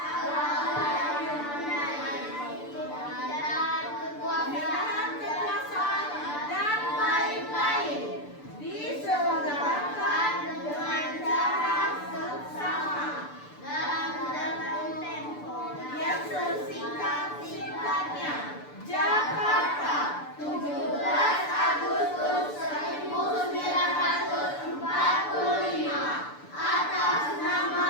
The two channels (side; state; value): right; late; 6.8 ms